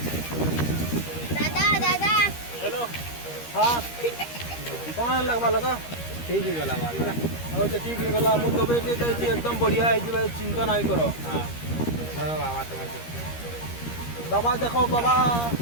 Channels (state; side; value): late; right; 13 ms